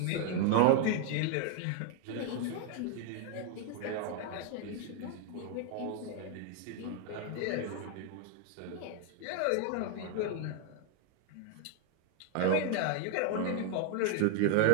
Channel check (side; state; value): both; different; correlation 0.00